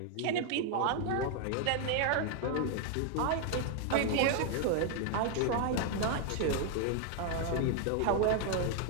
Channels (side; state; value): both; different; correlation 0.00